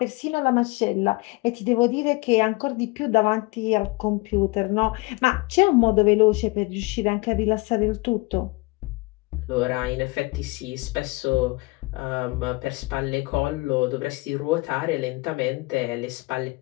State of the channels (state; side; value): quieter; right; 25.4 dB